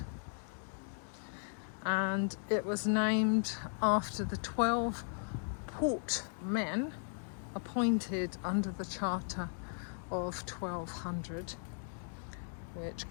and it was named after the 12 portmen appointed under the Charter of 1200, which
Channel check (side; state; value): right; silent; digital silence